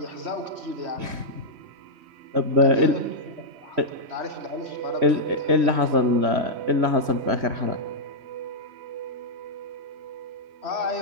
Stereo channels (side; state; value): left; late; 3.1 ms